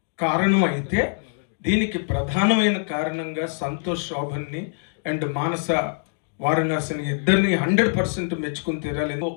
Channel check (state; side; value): silent; right; 60 dB below the other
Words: కారణం అయితే, దీనికి ప్రధానమైన కారణంగా సంతోష్ శోభన్ని అండ్ మానస వారణాసిని ఇద్దరిని 100% మెచ్చుకుని తీరాలి.